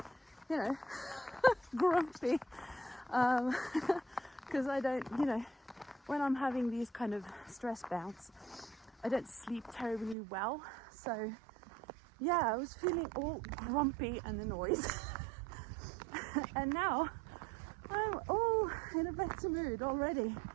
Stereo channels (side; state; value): left; drops out; at 10.2 s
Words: you know, grumpy, because I don't, you know, when I'm having these kind of stress bouts, I don't sleep terribly well. So yeah, I was feeling all grumpy and annoyed. And now I'm all in a better mood already.